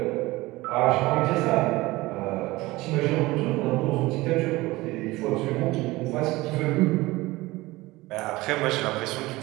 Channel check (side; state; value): left; quieter; 20.0 dB